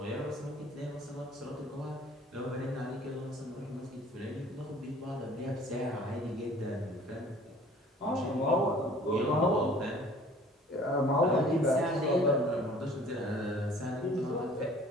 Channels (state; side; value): normal; both; correlation 0.51